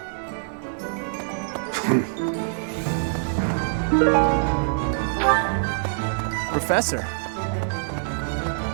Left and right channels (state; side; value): silent; left; 62 dB below the other